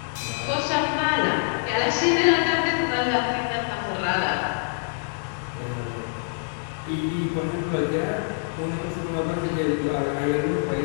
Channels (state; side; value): silent; right; digital silence